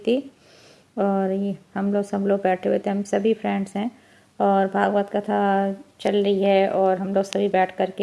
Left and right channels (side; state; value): both; identical; correlation 1.00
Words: और ये हम लोग सब लोग बैठे हुए थे, हम सभी फ्रेंड्स हैं और भागवत कथा चल रही है और हम लोग सभी बैठ कर